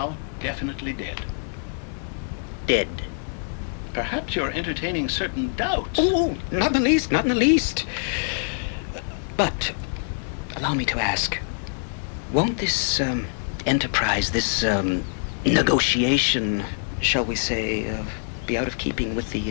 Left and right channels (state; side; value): silent; right; 62 dB below the other